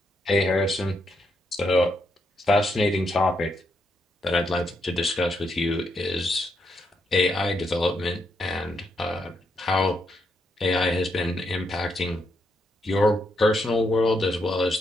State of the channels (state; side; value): normal; both; correlation 0.79